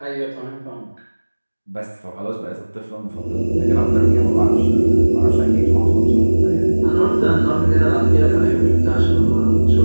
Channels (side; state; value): both; inverted; correlation -1.00